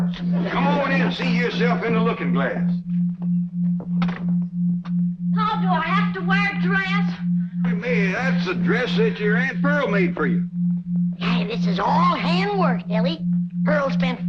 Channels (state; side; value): identical; both; correlation 1.00